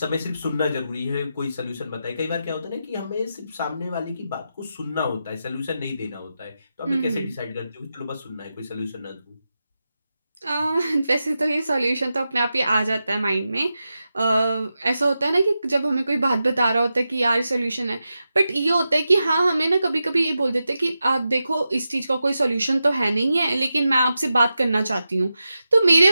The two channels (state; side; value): inverted; both; correlation -0.90